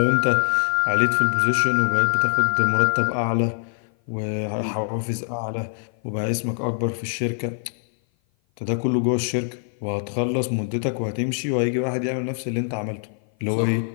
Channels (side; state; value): right; silent; 56 dB below the other